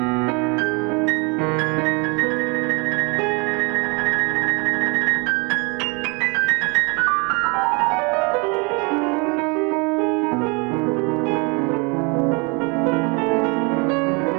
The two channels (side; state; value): left; quieter; 31.3 dB